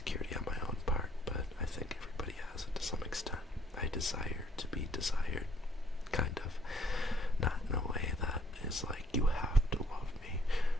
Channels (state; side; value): normal; both; correlation 0.63